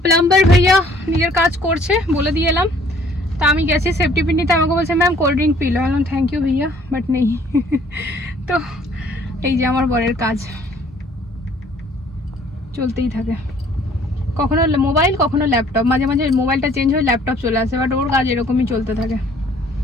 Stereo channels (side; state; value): both; normal; correlation 0.58